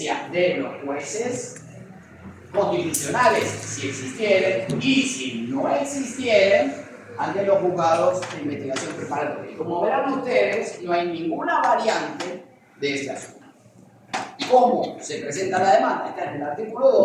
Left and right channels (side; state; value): both; identical; correlation 1.00